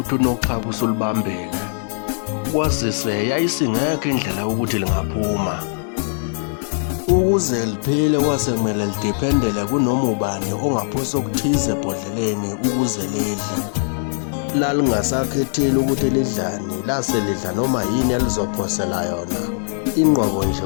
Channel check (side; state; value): right; silent; digital silence